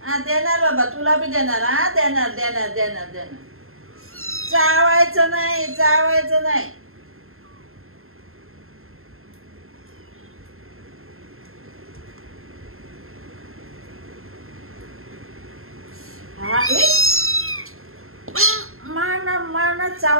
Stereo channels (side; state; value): left; late; 0.61 ms